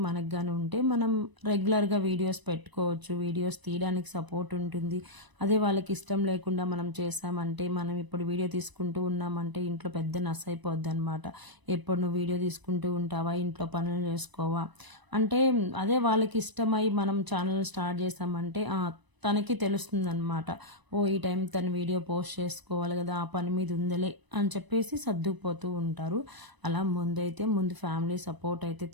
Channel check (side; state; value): left; late; 1.0 ms